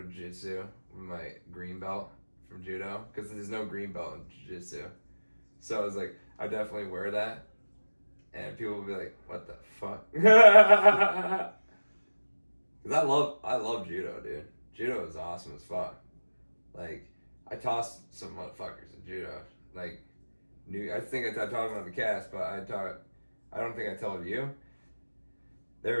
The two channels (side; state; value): both; inverted; correlation -1.00